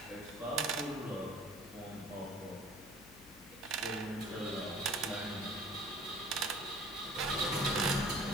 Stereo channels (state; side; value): noise; left; hum, 20 dB below the sound